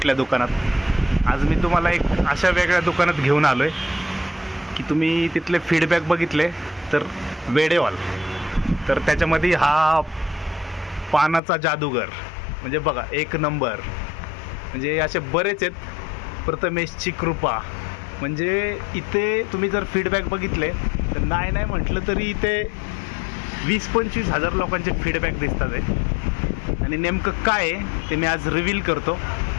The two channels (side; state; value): right; drops out; at 11.4 s